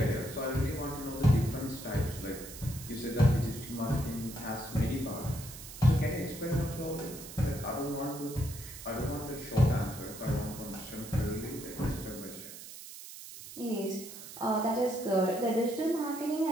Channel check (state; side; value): noise; right; hiss, 13 dB below the sound